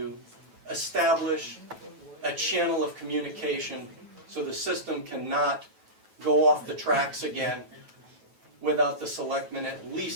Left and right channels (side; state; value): left; late; 9.2 ms